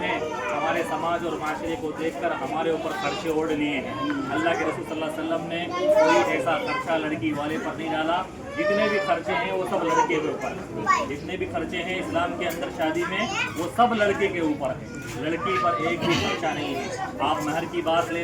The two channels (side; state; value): both; identical; correlation 1.00